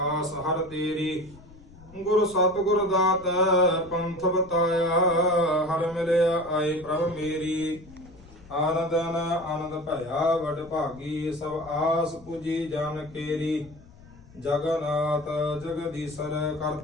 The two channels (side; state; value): left; noise; rumble, 22 dB below the sound